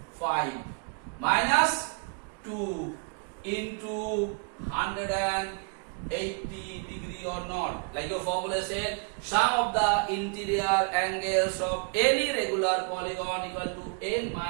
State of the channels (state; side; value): quieter; left; 37.9 dB